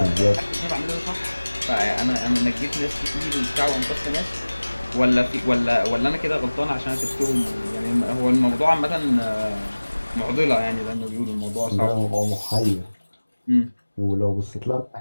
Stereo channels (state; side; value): inverted; both; correlation -1.00